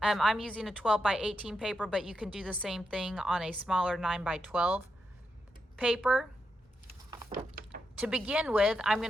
I'm using a 12 by 18 paper, but you can do the same thing on a smaller 9 by 12 paper. To begin with, I'm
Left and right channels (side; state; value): both; normal; correlation 0.85